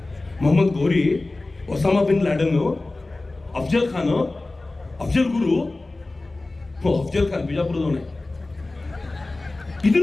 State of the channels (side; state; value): right; quieter; 3.1 dB